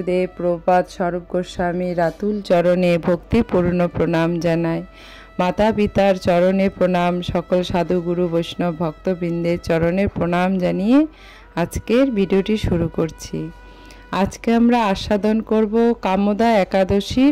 প্রভুপাদ স্বরূপ গোস্বামী রাতুল চরণে ভক্তিপূর্ণ প্রণাম জানায়। মাতা পিতার চরণে প্রণাম, সকল সাধু গুরু বৈষ্ণব ভক্তবৃন্দের চরণে প্রণাম জানিয়ে আজকের ভিডিওটি শুরু করছি। আজকে আমরা আস্বাদন করব কামদা একাদশীর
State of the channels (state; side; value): identical; both; correlation 1.00